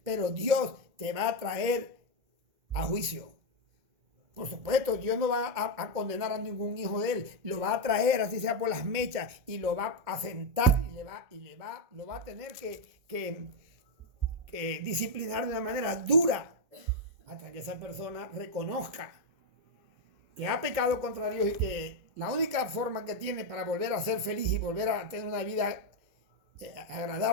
Pero Dios te va a traer a juicio. Por supuesto, Dios no va a condenar a ningún hijo de él, lo va a traer, así sea por las mechas, y lo va a sentar y lo va a tener que disciplinar de una manera dura hasta que esa persona reconozca que ha pecado contra Dios y que la única forma que tiene para volver a ser feliz y volver a tener una vida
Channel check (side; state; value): left; late; 2.2 ms